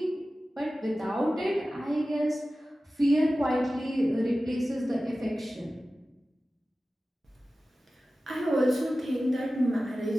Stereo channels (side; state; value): both; normal; correlation 0.95